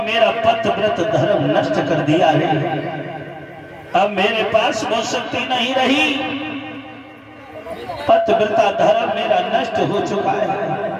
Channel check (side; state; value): both; identical; correlation 1.00